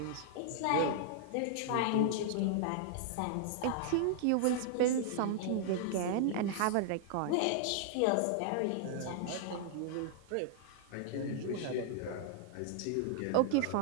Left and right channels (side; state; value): both; different; correlation -0.01